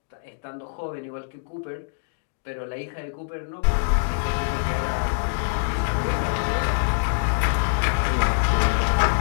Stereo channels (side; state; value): right; silent; digital silence